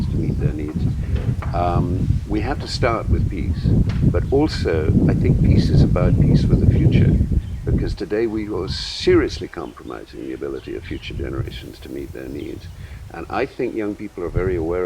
to meet their needs, we have to start with peace. But also, I think peace is about peace for the future. because today we are seriously compromising the ability of future generations to meet their needs. And I think young people are very aware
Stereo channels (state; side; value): identical; both; correlation 1.00